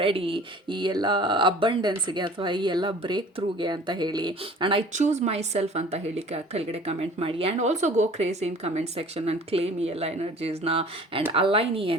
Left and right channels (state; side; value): normal; both; correlation 0.47